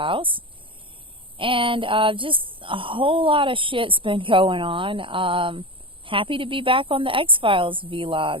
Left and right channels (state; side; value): late; left; 0.25 ms